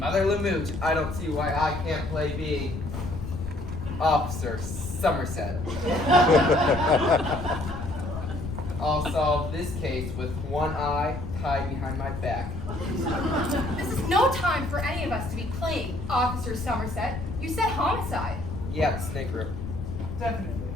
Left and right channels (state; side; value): noise; left; rumble, 7 dB below the sound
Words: Lamooch, I don't see why I can't play being Officer Somerset. I'll solve this case with one eye tied behind my back. This is no time for any of us to be playing Officer Somerset. You said homicide. Yeah, snake root. Definitely.